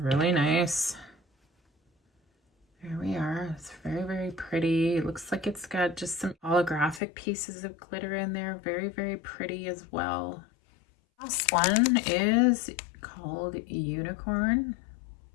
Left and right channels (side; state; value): right; drops out; at 7.0 s